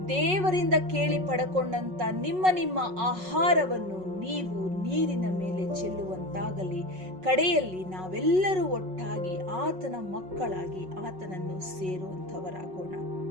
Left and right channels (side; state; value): left; late; 5.4 ms